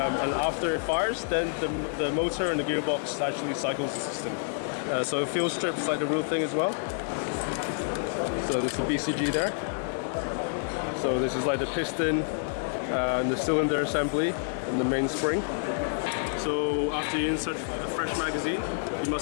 after it fires, then the motor and the gearbox actually cycles the system. So it feels stripped like the real thing as well. So this is the BCG there. So this is like the piston and the cylinder assembly and the main spring. So after you insert a fresh magazine, you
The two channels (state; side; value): silent; right; digital silence